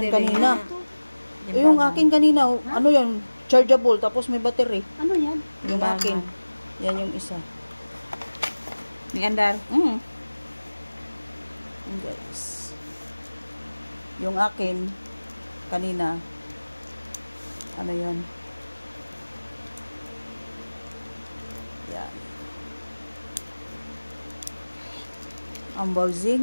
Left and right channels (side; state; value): both; inverted; correlation -1.00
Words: kanina. Yung akin kanina, ano yun? Chargeable, tapos may battery. Ano yan? Yung akin. Yan yung isa. Ni andar. Yan, guys. Yung akin, kanina, ano yun? Yan. Ang